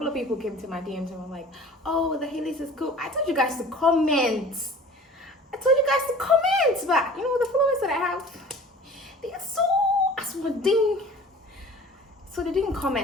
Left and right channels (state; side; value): normal; both; correlation 0.44